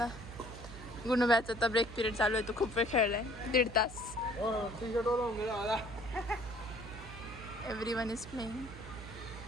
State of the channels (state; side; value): noise; right; hum, 13 dB below the sound